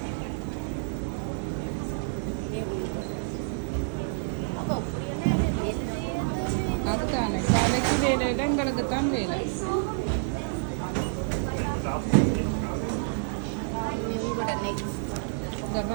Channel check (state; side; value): silent; left; 59 dB below the other